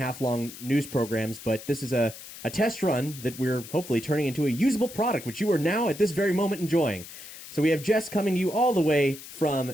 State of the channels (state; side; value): noise; left; hiss, 14 dB below the sound